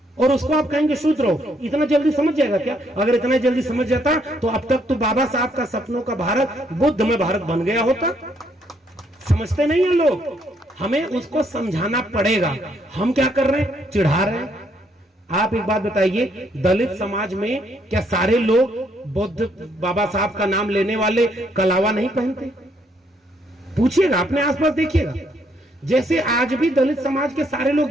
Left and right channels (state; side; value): normal; both; correlation 0.71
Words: और उसको आप कहेंगे शूद्र हो, इतना जल्दी समझ जाएगा क्या? अगर इतना जल्दी समझ जाता तो अब तक तो बाबा साहब का सपनों का भारत बुद्ध में भारत बन गया होता। समझते नहीं है लोग, हमें उसको समझाना पड़ेगा। हम क्या कर रहे हैं? चिढ़ा रहे हैं। आप एक बात बताइए, दलित समाज में क्या सारे लोग बुद्ध बाबा साहब का नाम लेने वाले कलावा नहीं पहनते? पूछिएगा, अपने आसपास देखिएगा। जैसे आज भी दलित समाज के सारे लोग